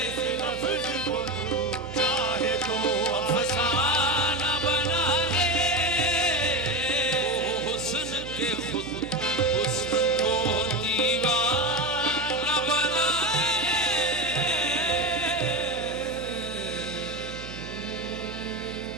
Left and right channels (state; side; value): noise; right; hum, 12 dB below the sound